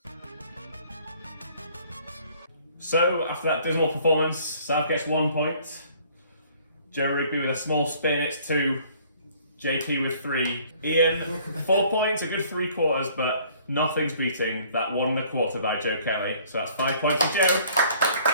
So, after that dismal performance, Sav gets 1 point. Joe Rigby with a small spin, it's 2. JP with 3. Ian, 4 points, a good 3/4, but nothing's beating that 1/4 by Joe Kelly. So that's 5 points for Joe.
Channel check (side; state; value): both; inverted; correlation -0.57